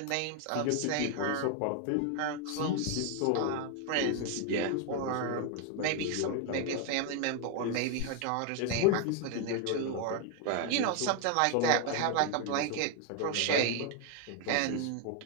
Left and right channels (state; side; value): different; both; correlation 0.01